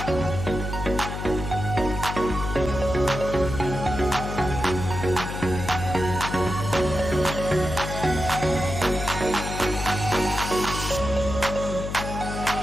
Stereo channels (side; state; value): left; noise; hum, 6 dB below the sound